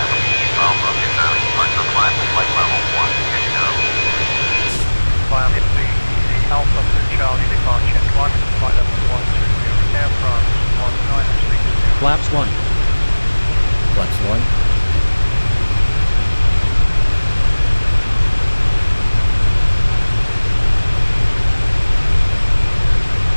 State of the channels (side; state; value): both; inverted; correlation -1.00